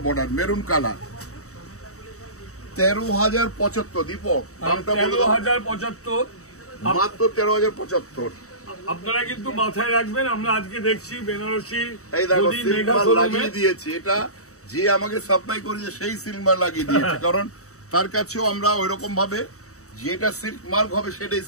বর্ডার, মেরুন কালার। 13,075 দীপক, দামটা বলে দাও। 13,075, মাত্র 13,075। আপনারা কিন্তু মাথায় রাখবেন, আমরা আজকে দেখছি বেনারসি এই দেখো সিলমার লাগিয়ে দিয়েছি, এটা যে আমাকে সাপ্লাই করেছে সেই সিলমার লাগিয়ে দিয়েছে, কারণ তার কাছেও আমরা ওইরকম ভাবে যেটা সিল্ক মার্ক হবে সেটাই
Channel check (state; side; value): late; right; 0.65 ms